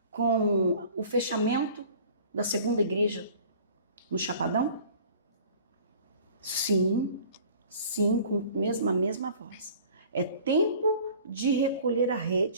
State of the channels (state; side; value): inverted; both; correlation -0.48